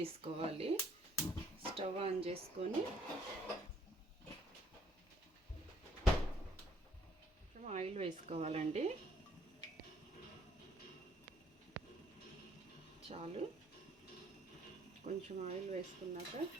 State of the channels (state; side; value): normal; both; correlation 0.64